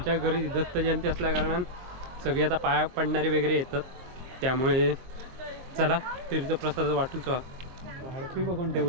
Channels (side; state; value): left; late; 23 ms